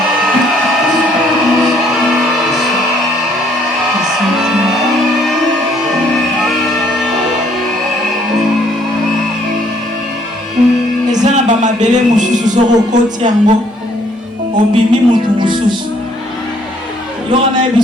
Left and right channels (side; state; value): both; normal; correlation 0.64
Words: Ezana ba mabele mususu soko koti yango obimi mutu mususu. Yo na